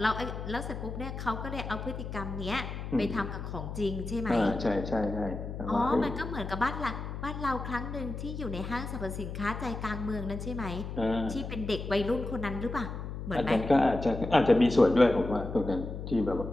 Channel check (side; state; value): left; noise; hum, 7 dB below the sound